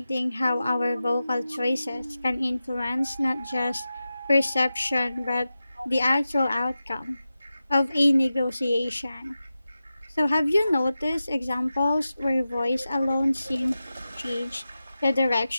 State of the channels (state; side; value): inverted; both; correlation -0.93